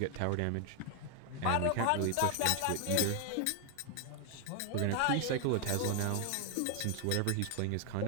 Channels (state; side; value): different; both; correlation 0.00